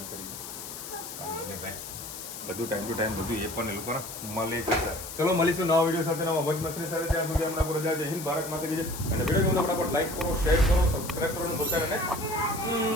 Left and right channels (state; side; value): noise; left; hiss, 10 dB below the sound